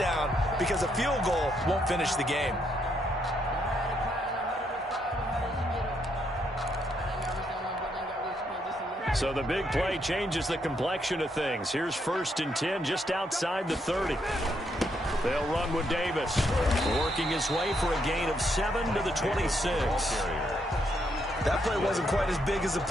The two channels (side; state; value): both; normal; correlation 0.76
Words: because a field goal won't finish the game. So the big play changes the complexion of things. Here's 1st and 10 just outside the 30. They'll run with Davis, working his way for a gain of 7 to the 26. That play wasn't quite as big as the